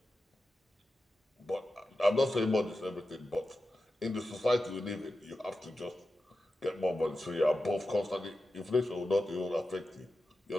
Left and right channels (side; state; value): both; normal; correlation 0.92